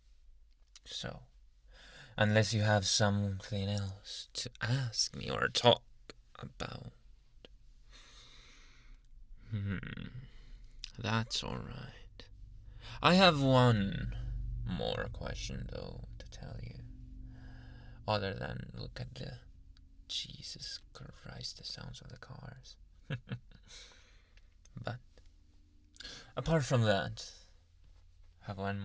So, unless you have something else to ask me or talk about, that's alright. I have one more question, though, to tell you. Other than look at the Jesus Christ, the sounds of the cars. But apart from that, I have one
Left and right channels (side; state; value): both; identical; correlation 1.00